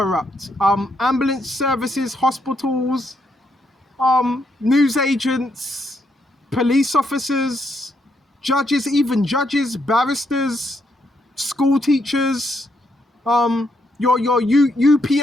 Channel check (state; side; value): normal; both; correlation 0.77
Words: ambulance services, hospitals, news agents, police officers, judges, even judges, barristers, school teachers, your